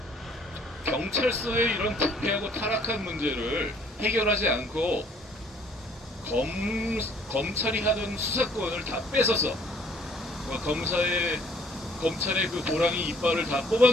경찰서의 이런 부패하고 타락한 문제를 해결하지 않고 검찰이 하던 수사권을 다 뺏어서 검찰의 그 호랑이 이빨을 다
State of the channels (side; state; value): both; normal; correlation 0.59